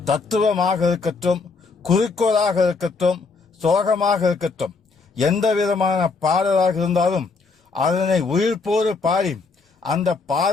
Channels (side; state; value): right; quieter; 4.4 dB